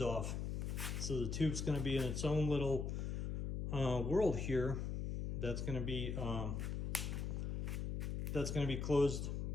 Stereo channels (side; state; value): left; noise; hum, 2 dB below the sound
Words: off. So the tube's gonna be in its own little world here that's gonna be closed